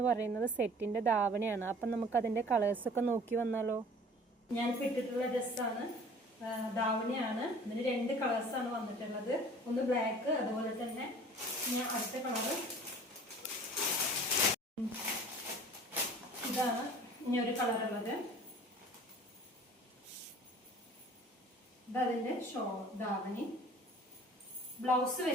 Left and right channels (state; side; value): normal; both; correlation 0.47